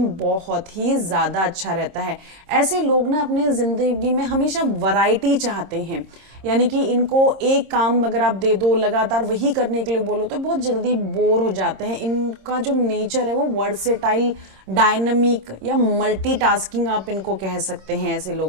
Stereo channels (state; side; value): late; left; 26 ms